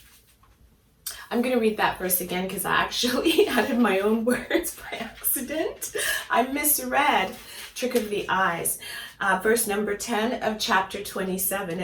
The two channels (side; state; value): both; identical; correlation 1.00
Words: I'm going to read that verse again because I actually added my own words by accident. I misread Trick of the Eyes. Verse number 10 of chapter 27,